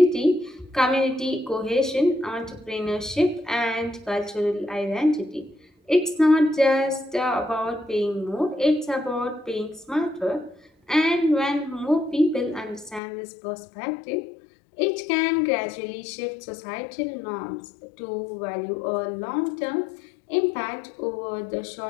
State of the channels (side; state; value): right; drops out; at 13.0 s